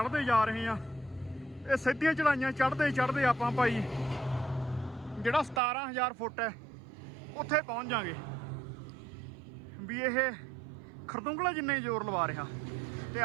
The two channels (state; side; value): drops out; left; at 5.6 s